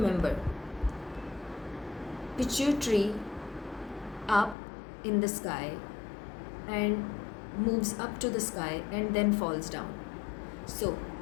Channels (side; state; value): right; drops out; at 4.5 s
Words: pituitary up in the sky and moves up to the sky and then falls down. So